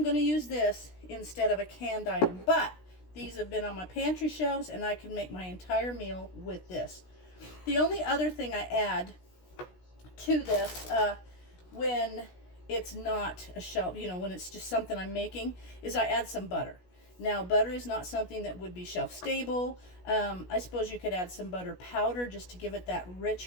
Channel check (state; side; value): late; right; 16 ms